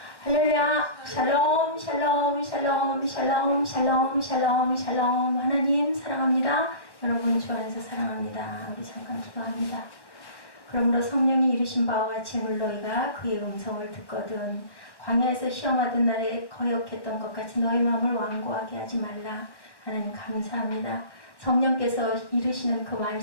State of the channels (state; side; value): late; right; 1.1 ms